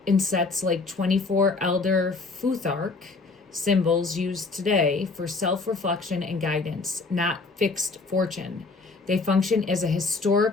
in sets like 24 Elder Futhark symbols used today for self-reflection and guidance, not fixed fortune. They function as a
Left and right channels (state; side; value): quieter; right; 3.9 dB